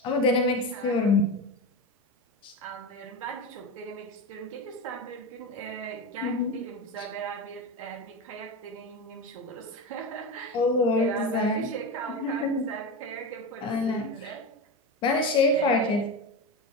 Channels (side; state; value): both; normal; correlation 0.20